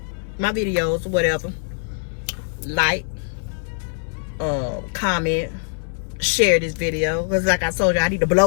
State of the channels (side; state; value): right; silent; digital silence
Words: my videos or whatever. Like, comment, share this video, because like I told you, I need to